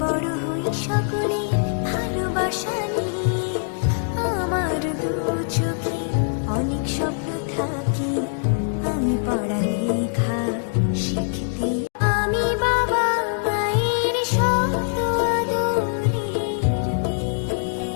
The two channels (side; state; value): right; silent; digital silence